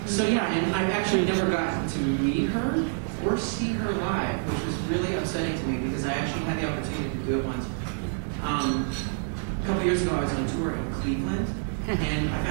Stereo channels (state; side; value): silent; left; 60 dB below the other